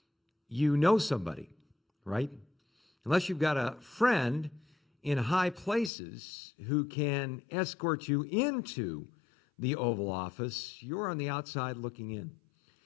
you know somebody, right? Unless you've got a friend in high places who can escort you into the Oval Office, you're on the outside looking in.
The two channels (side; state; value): right; drops out; at 5.9 s